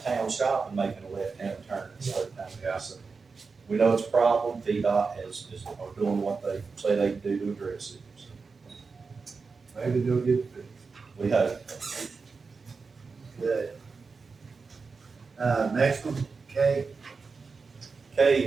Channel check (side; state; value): left; quieter; 4.7 dB